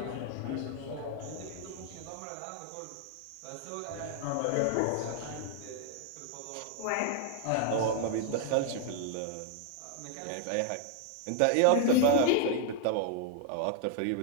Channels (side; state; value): both; different; correlation 0.00